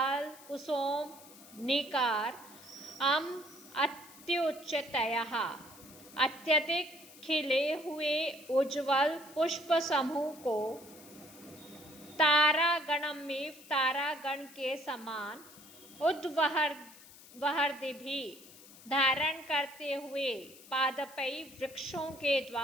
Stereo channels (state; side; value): noise; left; hiss, 20 dB below the sound